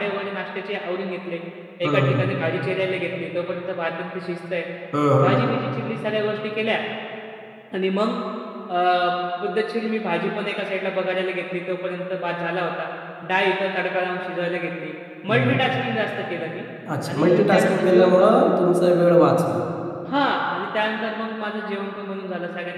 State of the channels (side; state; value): both; identical; correlation 1.00